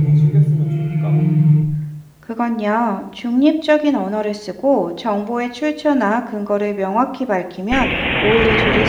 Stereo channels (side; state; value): both; identical; correlation 1.00